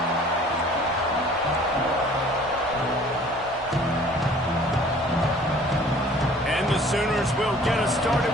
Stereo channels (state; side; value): normal; both; correlation 0.52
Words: Sooners will get us started